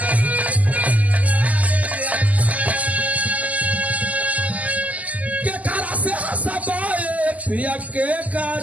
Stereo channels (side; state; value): left; late; 0.075 ms